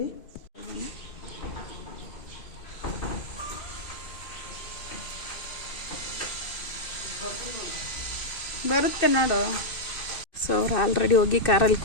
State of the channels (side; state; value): right; late; 2.6 ms